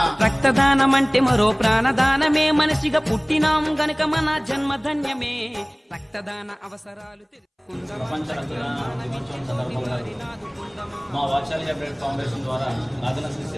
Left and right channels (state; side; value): identical; both; correlation 1.00